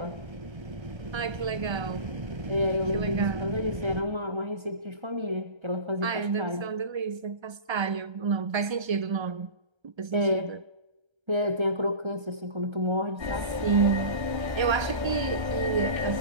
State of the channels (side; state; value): left; late; 1.3 ms